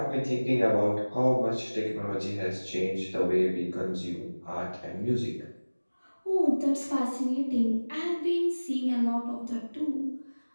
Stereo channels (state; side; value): inverted; both; correlation -1.00